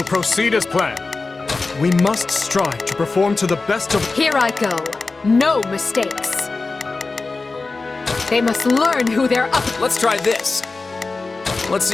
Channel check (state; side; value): quieter; right; 3.8 dB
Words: proceed as planned. We must strive to perform to the best of... Here I go. No mistakes. They must learn who they're up... Let's try this. Let's